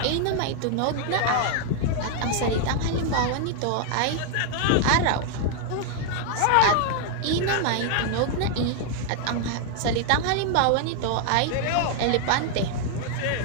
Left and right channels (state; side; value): different; both; correlation 0.00